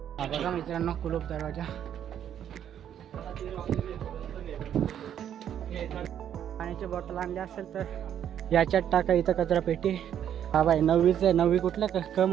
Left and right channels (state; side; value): quieter; left; 9.8 dB